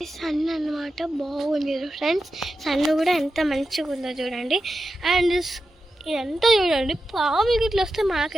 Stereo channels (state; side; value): normal; both; correlation 0.91